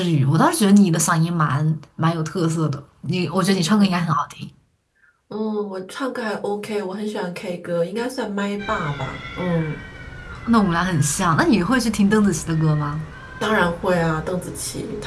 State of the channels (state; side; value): identical; both; correlation 1.00